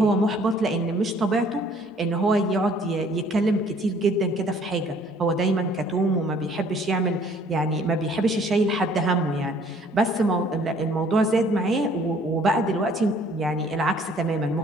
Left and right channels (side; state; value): both; normal; correlation 0.58